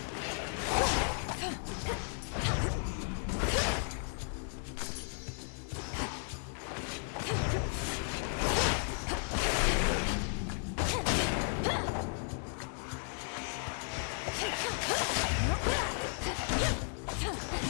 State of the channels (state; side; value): silent; right; 55 dB below the other